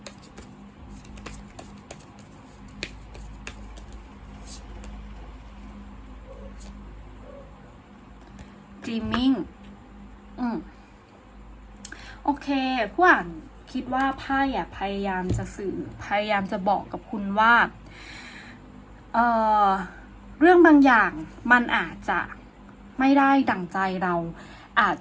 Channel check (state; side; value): identical; both; correlation 1.00